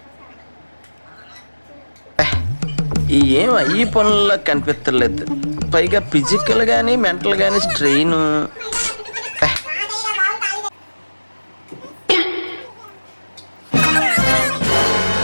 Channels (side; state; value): both; inverted; correlation -1.00